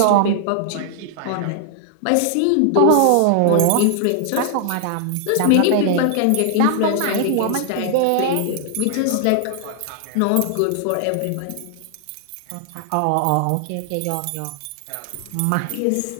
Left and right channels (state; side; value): different; both; correlation 0.00